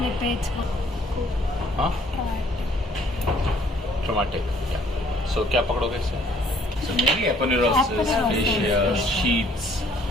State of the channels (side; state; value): both; normal; correlation 0.61